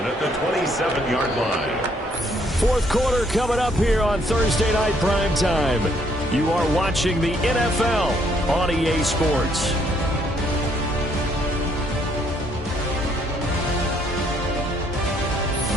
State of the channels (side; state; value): both; normal; correlation 0.68